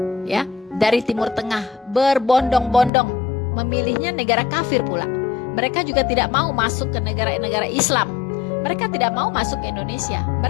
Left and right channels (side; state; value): right; drops out; at 2.9 s